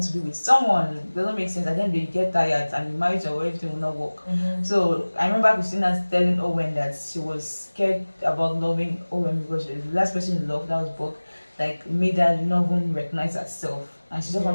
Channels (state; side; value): inverted; both; correlation -1.00